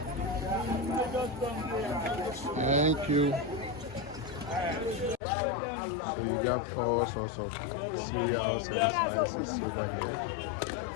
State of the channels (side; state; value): right; drops out; at 5.2 s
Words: Thank you. So you got all sorts of cereals and spices over here.